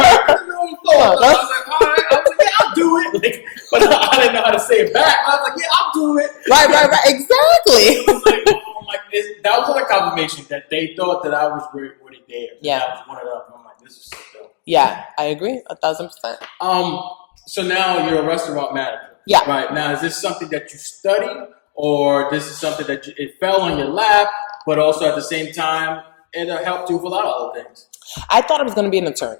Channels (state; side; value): silent; right; digital silence